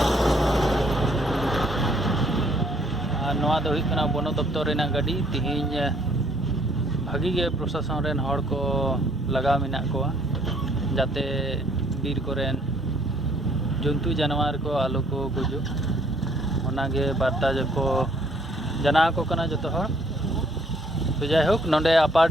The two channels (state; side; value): normal; both; correlation 0.63